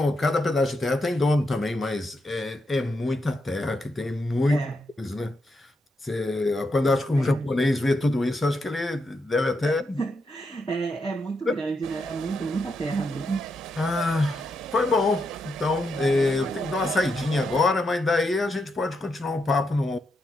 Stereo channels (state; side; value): normal; both; correlation 0.82